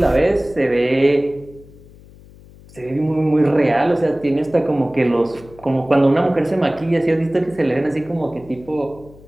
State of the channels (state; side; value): noise; left; hum, 23 dB below the sound